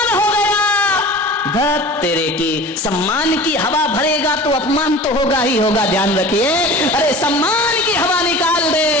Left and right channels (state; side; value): normal; both; correlation 0.39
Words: हो गया। धत तेरे की, सम्मान की हवा भरेगा तो अपमान तो होगा ही होगा, ध्यान रखिए। अरे सम्मान की हवा निकाल दे,